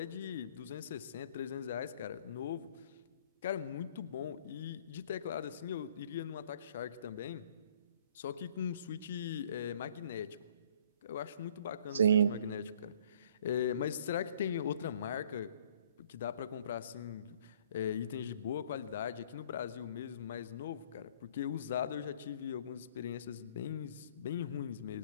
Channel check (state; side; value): inverted; both; correlation -0.57